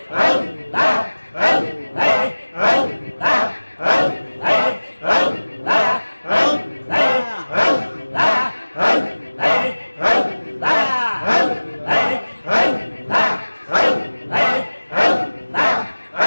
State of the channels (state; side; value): inverted; both; correlation -1.00